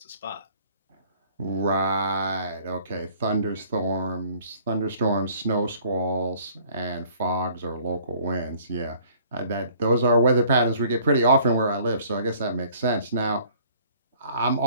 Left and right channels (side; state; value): both; inverted; correlation -0.57